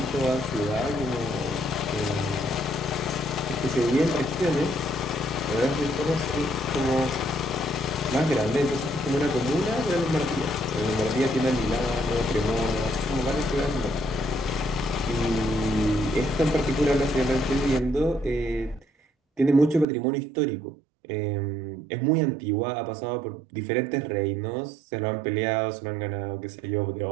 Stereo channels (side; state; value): left; drops out; at 19.9 s